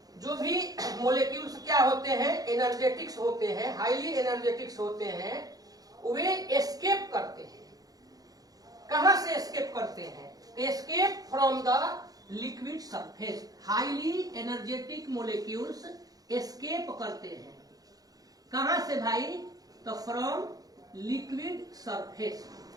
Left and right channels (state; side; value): late; left; 0.18 ms